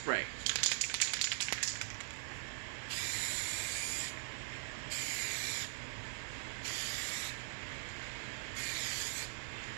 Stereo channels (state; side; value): silent; left; digital silence